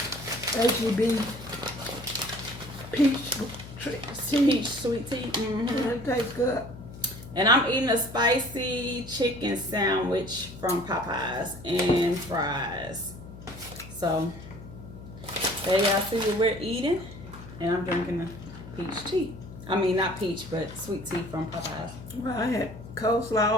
peach sweet tea. Mm-hmm. It tastes good. And I'm eating a spicy chicken sandwich from Popeyes and fries. So, there y'all see what we're eating. And I'm drinking a peach tea. I mean, not peach, but sweet tea from Popeyes. Well, I had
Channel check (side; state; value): left; noise; hum, 15 dB below the sound